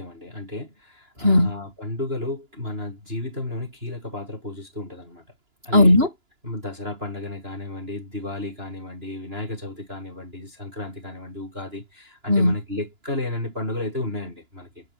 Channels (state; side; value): late; left; 2.9 ms